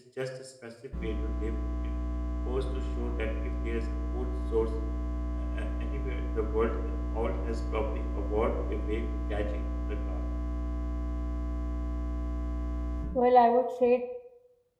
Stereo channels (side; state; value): both; identical; correlation 1.00